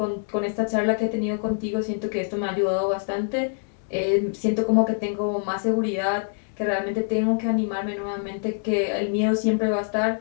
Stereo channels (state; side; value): silent; right; digital silence